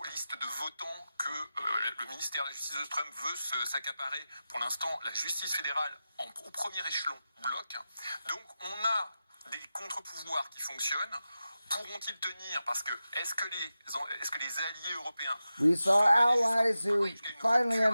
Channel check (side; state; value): both; inverted; correlation -0.93